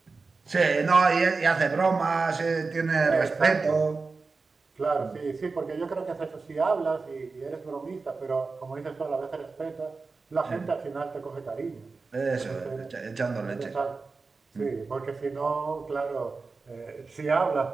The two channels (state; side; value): quieter; left; 4.2 dB